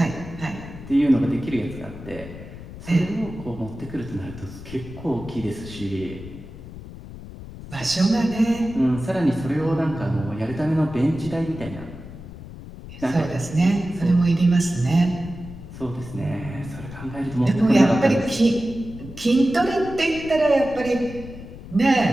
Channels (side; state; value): left; noise; rumble, 14 dB below the sound